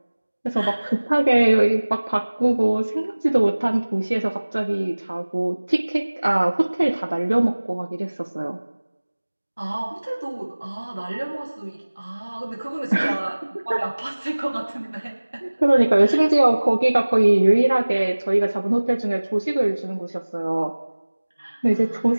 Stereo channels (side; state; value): both; inverted; correlation -1.00